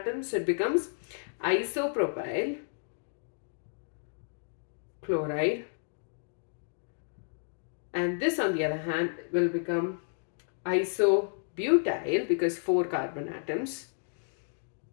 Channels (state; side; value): silent; right; digital silence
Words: so it becomes isopropyl chloride, and this on the other hand will become isobutyl because 4 carbon atoms